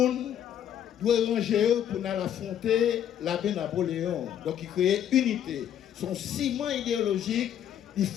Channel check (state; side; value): quieter; right; 10.0 dB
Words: doit ranger pour affronter l'abbé Napoléon. Donc il crée unité. Son ciment idéologique, il